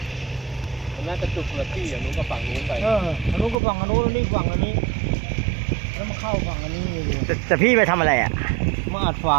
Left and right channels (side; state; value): left; drops out; at 3.6 s